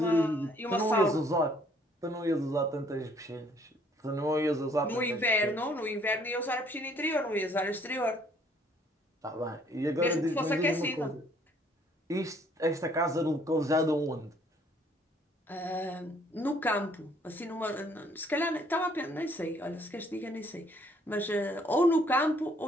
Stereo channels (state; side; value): normal; both; correlation 0.62